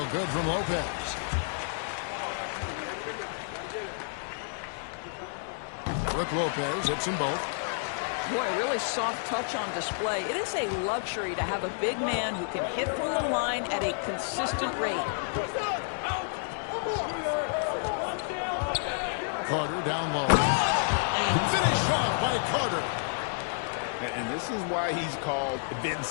good from Lopez. Brook Lopez hits them both. Boy, really soft touch on display. It is a luxury to have a big man who can hit from the line at a consistent rate. Carter down low. And finished off by Carter. And this is why he's called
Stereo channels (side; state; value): right; silent; digital silence